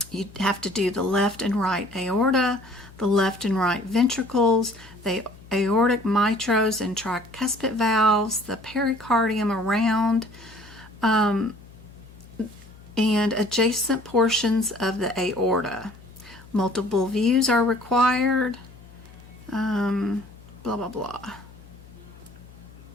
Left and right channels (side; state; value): left; noise; hum, 21 dB below the sound